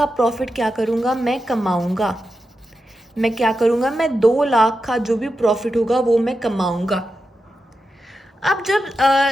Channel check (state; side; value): normal; both; correlation 0.89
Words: प्रॉफिट क्या करूँगा, मैं कमाऊँगा। मैं क्या करूँगा, मैं 2 लाख का जो भी प्रॉफिट होगा वो मैं कमाऊँगा। अब जब